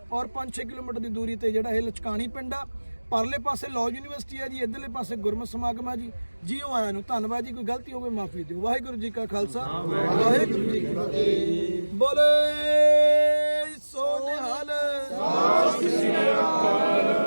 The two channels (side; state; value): both; inverted; correlation -1.00